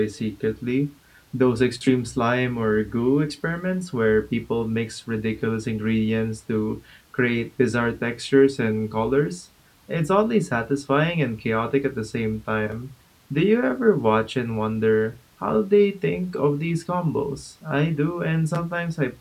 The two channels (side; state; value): both; identical; correlation 1.00